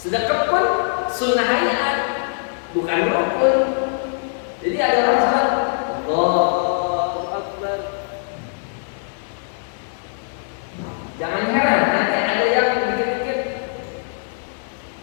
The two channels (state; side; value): silent; right; digital silence